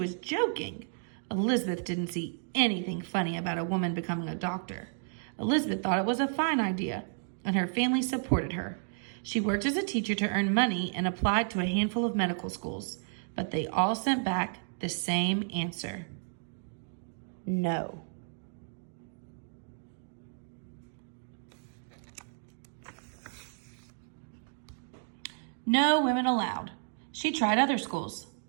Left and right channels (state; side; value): silent; left; digital silence